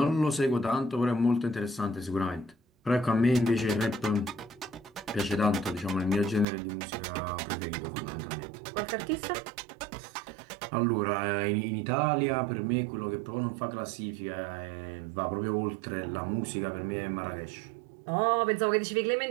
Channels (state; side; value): drops out; left; at 6.5 s